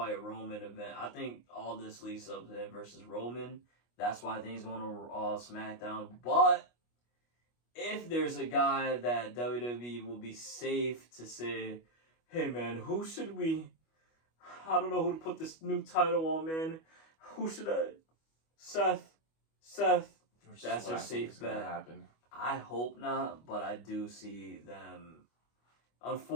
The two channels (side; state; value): right; late; 25 ms